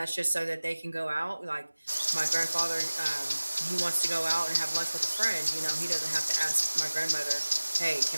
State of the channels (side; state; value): both; inverted; correlation -1.00